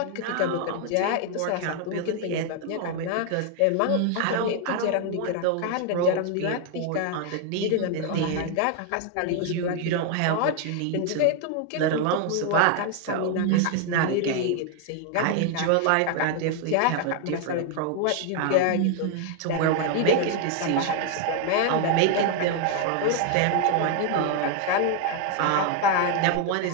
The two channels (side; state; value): both; different; correlation 0.00